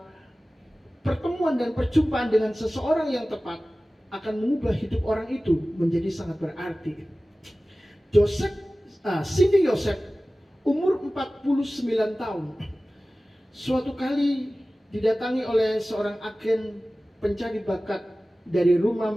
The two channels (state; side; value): normal; both; correlation 0.97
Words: pertemuan dan perjumpaan dengan seseorang yang tepat akan mengubah hidup orang itu menjadi sangat berarti. Cindy Joseph umur 49 tahun suatu kali didatangi oleh seorang agen pencari bakat dari rumah